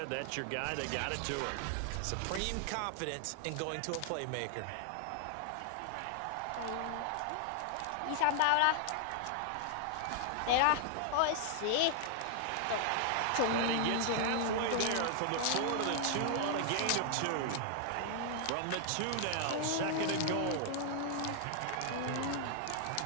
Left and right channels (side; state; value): both; different; correlation 0.00